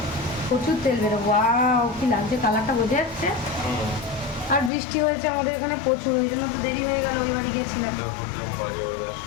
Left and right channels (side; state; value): right; drops out; at 4.7 s